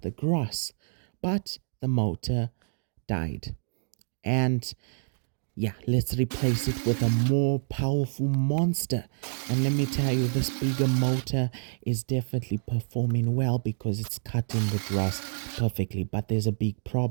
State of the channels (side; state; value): left; silent; 57 dB below the other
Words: the grass, but the motor died. And yeah, let's replace it with a more powerful monster. And let me tell you, this bigger motor is definitely performing well because it's cutting the grass perfectly. But there's a big